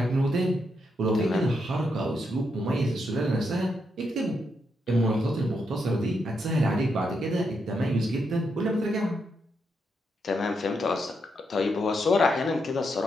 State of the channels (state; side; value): normal; both; correlation 0.81